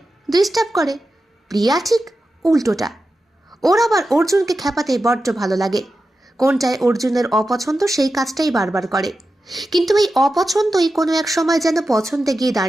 ডিস্টার্ব করে, প্রিয়া ঠিক উল্টোটা। ওর আবার অর্জুনকে খেপাতে বড্ড ভালো লাগে। কোনটায় অর্জুনের অপছন্দ সেই কাজটাই বারবার করে। কিন্তু এই অপছন্দই কোনো এক সময় যেন পছন্দে গিয়ে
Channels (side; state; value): both; normal; correlation 0.91